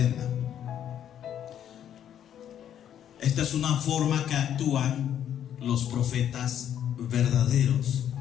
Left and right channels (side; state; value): right; quieter; 10.0 dB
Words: Esta es una forma que actúan los profetas verdaderos.